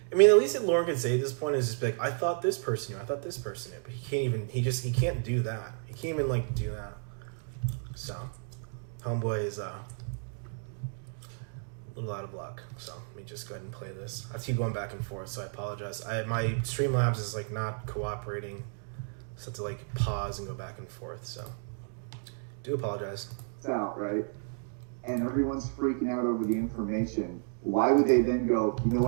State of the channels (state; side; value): silent; left; 56 dB below the other